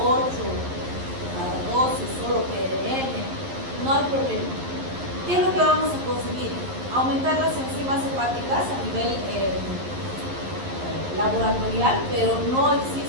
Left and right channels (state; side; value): late; left; 11 ms